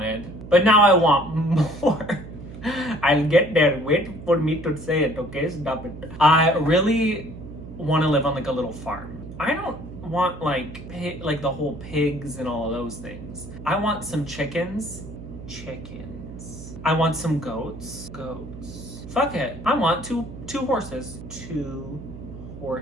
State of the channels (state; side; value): noise; right; hum, 13 dB below the sound